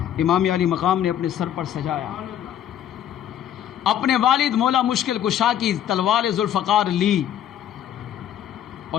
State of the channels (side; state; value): right; quieter; 10.6 dB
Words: امام علی مقام نے اپنے سر پر سجایا، اپنے والد مولا مشکل کشا کی تلوار ذوالفقار لی اور